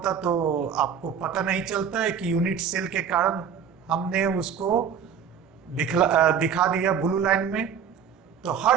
तो आपको पता नहीं चलता है कि यूनिट सेल के कारण हमने उसको दिखा दिया ब्लू लाइन में। तो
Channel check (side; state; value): left; quieter; 7.4 dB